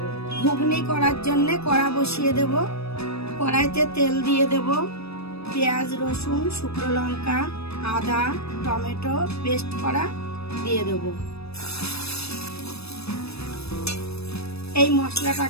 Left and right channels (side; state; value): right; late; 0.78 ms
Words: ঘুগনি করার জন্য কড়া বসিয়ে দেব। কড়াইতে তেল দিয়ে দেব। পেঁয়াজ, রসুন, শুকনো লঙ্কা, আদা, টমেটো পেস্ট করা দিয়ে দেব। এই